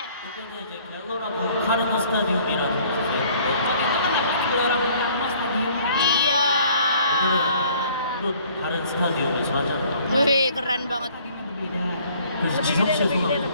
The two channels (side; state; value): both; inverted; correlation -0.57